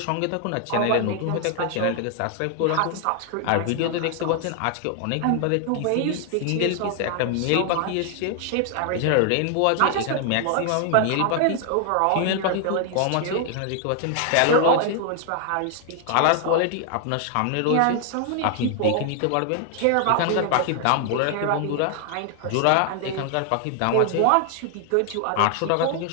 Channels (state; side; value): different; both; correlation 0.00